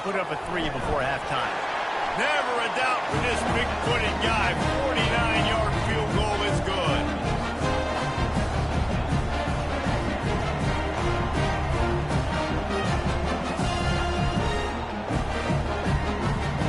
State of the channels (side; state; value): both; identical; correlation 1.00